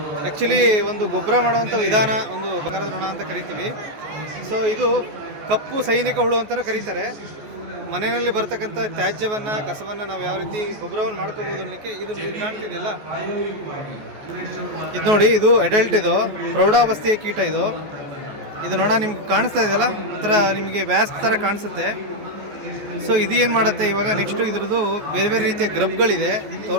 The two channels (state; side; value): late; left; 14 ms